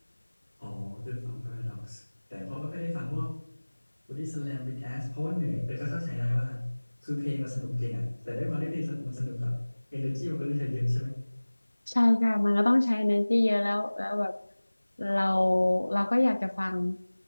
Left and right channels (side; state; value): both; inverted; correlation -1.00